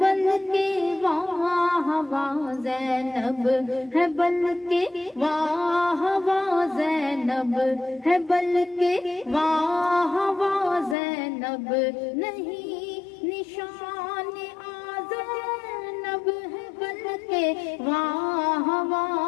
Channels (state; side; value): drops out; right; at 11.0 s